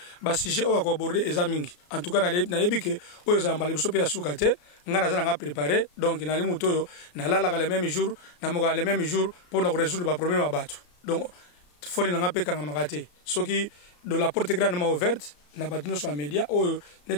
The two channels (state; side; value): late; right; 34 ms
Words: ba sujet o ko aborder eza mingi en tout cas na yebi que oyo za mbali biso pe ya suka te ngana za nga préparer donc na limu toyo na lala le même jour na moka le même jour pour na résoudre ba problème à battu donc foni na nga pe kanga makate soki de la porte grandement ouverte na battu sur média o